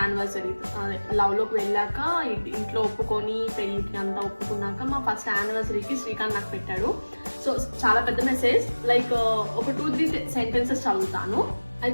లవ్లోకి వెళ్ళాక ఇంట్లో ఒప్పుకొని పెళ్ళికి అంతా ఒప్పుకున్నాక మా ఫస్ట్ యానివర్సరీకి శ్రీకాంత్ నాకు పెట్టాడు. సో చాలా పెద్ద మెసేజ్, లైక్ ఒక 2-3 సెంటెన్సెస్ చదువుతాను. I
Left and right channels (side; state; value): both; inverted; correlation -1.00